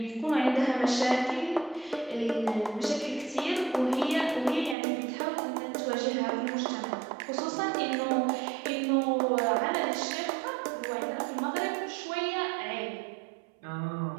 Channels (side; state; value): left; drops out; at 4.8 s